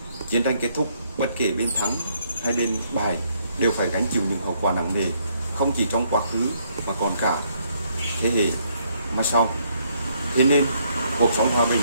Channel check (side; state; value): both; inverted; correlation -0.71